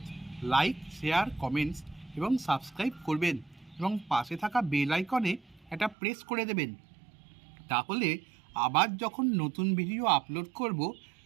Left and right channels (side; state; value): left; drops out; at 6.0 s